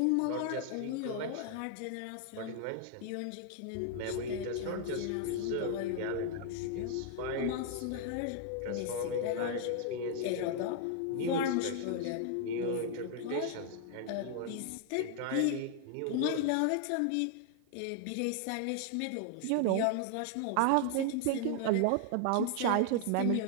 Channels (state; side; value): different; both; correlation 0.00